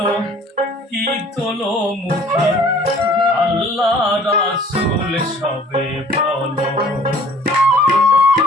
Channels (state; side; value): normal; both; correlation 0.53